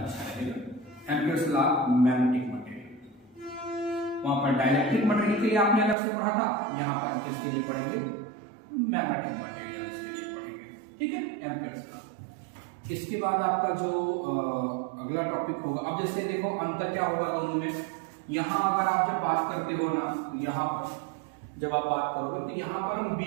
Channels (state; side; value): drops out; left; at 6.0 s